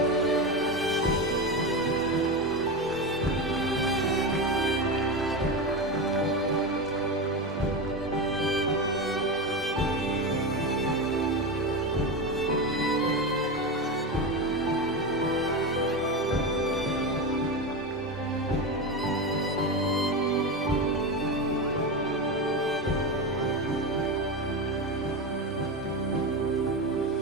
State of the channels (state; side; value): normal; both; correlation 0.18